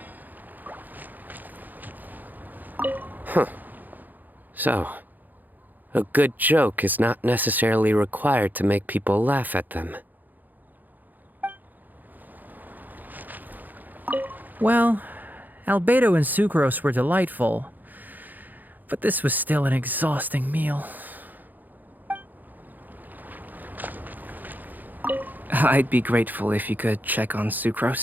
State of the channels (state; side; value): late; left; 0.085 ms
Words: So, a good joke is not necessarily required to make people laugh at them. Well, Albedo and Sucrose were delightful, but this was still an exhausting meal. I'd be grateful if you could check on